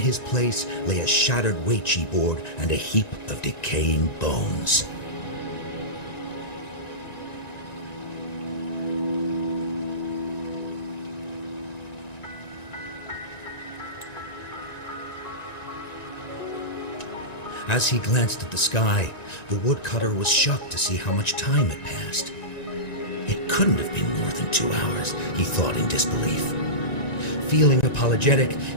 place lay a shattered Weiqi board and a heap of decaying bones. As he glanced at the sky, the woodcutter was shocked to see how much time had passed. It couldn't have been more than 2 hours, he thought in disbelief. Feeling apologetic,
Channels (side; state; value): right; late; 1.9 ms